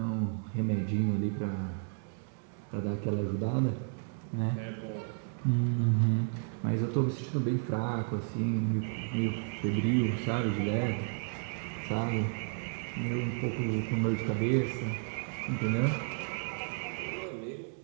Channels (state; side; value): silent; left; 56 dB below the other